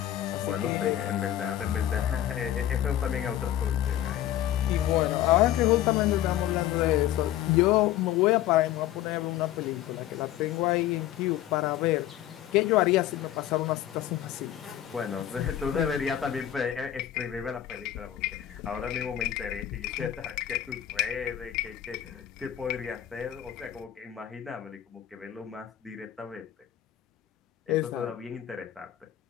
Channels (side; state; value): right; quieter; 12.1 dB